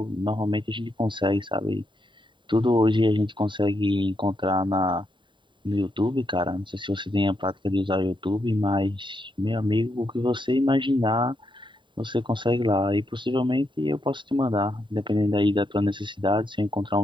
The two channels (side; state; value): left; late; 0.23 ms